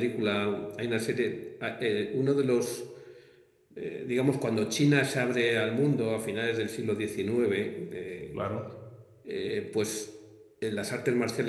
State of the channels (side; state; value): both; identical; correlation 1.00